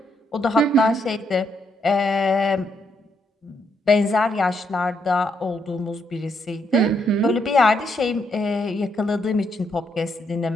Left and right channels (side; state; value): both; normal; correlation 0.76